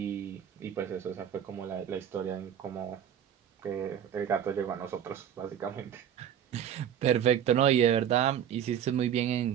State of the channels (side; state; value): left; quieter; 9.4 dB